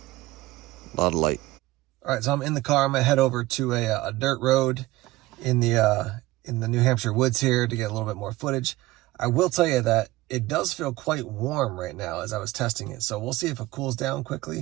A lot of light. All right, so I'm in the car. I'm gonna head over to a dirt road in the New Hampshire woods here to get a little bit more footage. I will tell you that it does feel quite warm right now as I was testing it. So we'll see if it cools down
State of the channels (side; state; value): left; quieter; 18.5 dB